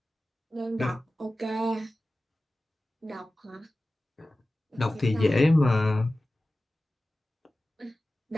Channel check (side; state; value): both; normal; correlation 0.96